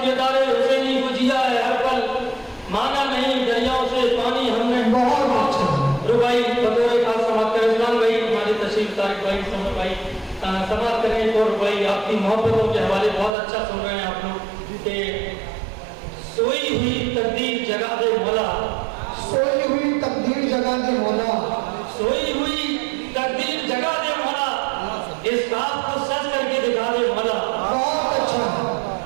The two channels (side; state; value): left; drops out; at 13.3 s